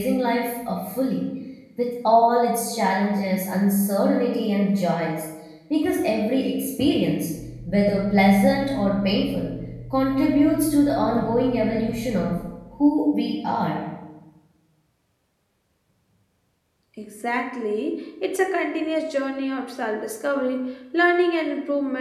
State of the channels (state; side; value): identical; both; correlation 1.00